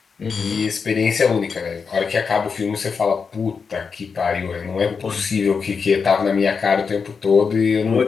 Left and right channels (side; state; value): right; quieter; 5.5 dB